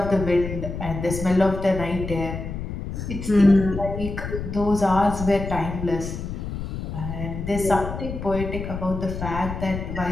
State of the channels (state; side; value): noise; left; rumble, 6 dB below the sound